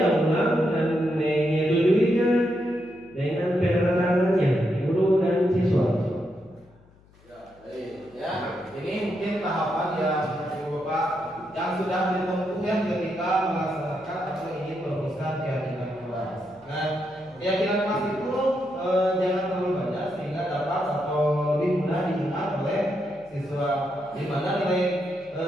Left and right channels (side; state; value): left; noise; hum, 28 dB below the sound